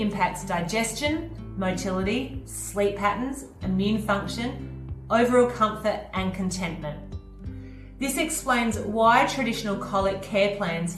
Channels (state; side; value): identical; both; correlation 1.00